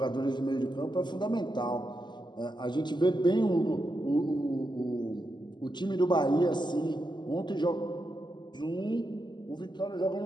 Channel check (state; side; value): late; right; 0.21 ms